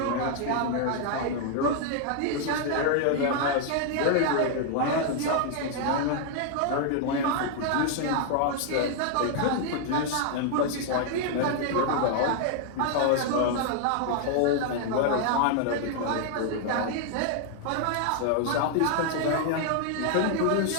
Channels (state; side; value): different; both; correlation 0.00